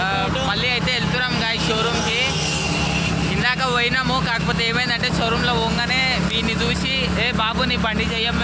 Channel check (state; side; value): identical; both; correlation 1.00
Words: మళ్ళీ అయితే వెళ్తున్నాం గాయ్స్ షోరూమ్కి. ఇందాక పోయినాము, కాకపోతే ఏమైందంటే షోరూంలో పోగానే వీడిని చూసి, ఏ బాబు నీ బండి చెయ్యం